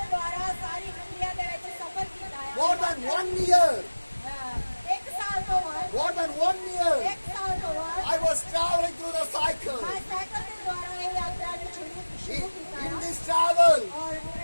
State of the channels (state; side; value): inverted; both; correlation -1.00